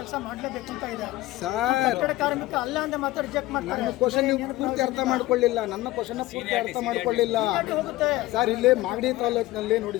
ಮಾಡಲೇಬೇಕು ಅಂತ ಇದೆ ಸರ್. ಕಟ್ಟಡ ಕಾರ್ಮಿಕ ಅಲ್ಲ ಅಂದ್ರೆ ಮಾತ್ರ ರಿಜೆಕ್ಟ್ ಮಾಡ್ತಾರೆ. ನನ್ನ ಕ್ವಶನ್ ನೀವು ಪೂರ್ತಿ ಅರ್ಥ ಮಾಡ್ಕೊಳ್ಳಿಲ್ಲ. ಸರ್, ಇಲ್ಲಿ ಮಾಗಡಿ ತಾಲೂಕಿನಲ್ಲಿ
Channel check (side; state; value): right; quieter; 17.8 dB